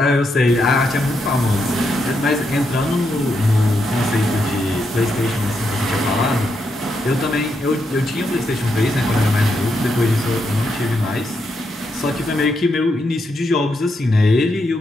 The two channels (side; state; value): both; normal; correlation 0.81